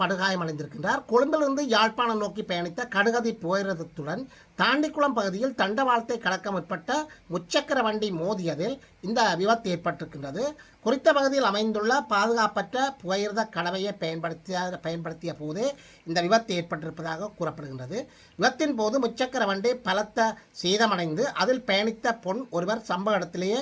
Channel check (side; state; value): both; identical; correlation 1.00